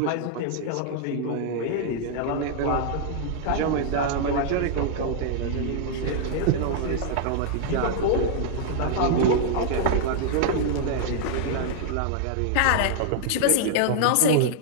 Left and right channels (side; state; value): both; different; correlation -0.01